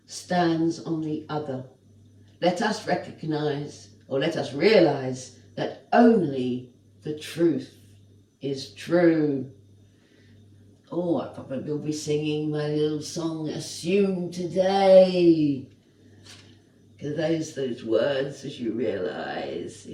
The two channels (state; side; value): identical; both; correlation 1.00